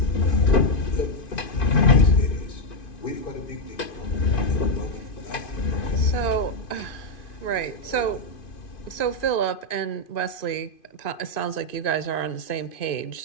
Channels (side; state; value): right; late; 2.5 ms